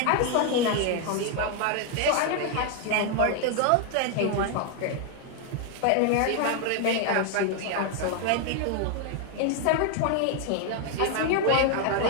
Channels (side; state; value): both; different; correlation 0.01